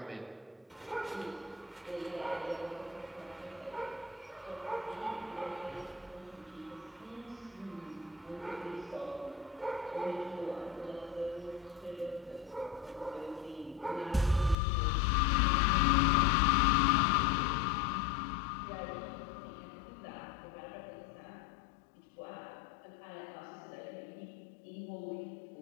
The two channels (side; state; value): right; drops out; at 14.6 s